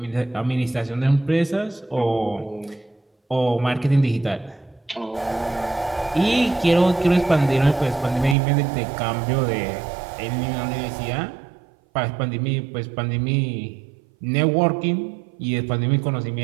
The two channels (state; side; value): drops out; left; at 8.3 s